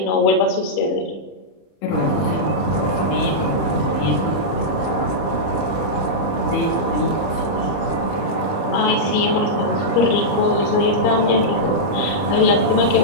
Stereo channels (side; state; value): right; late; 30 ms